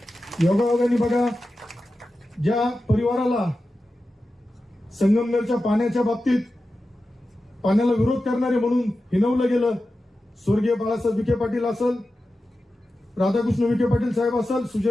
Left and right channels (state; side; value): normal; both; correlation 0.93